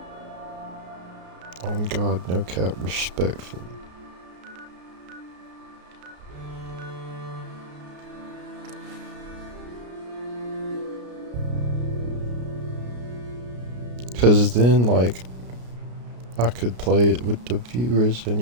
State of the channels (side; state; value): left; late; 33 ms